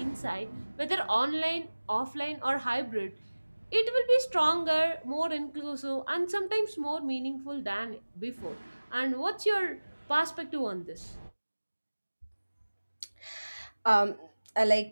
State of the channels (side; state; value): both; inverted; correlation -1.00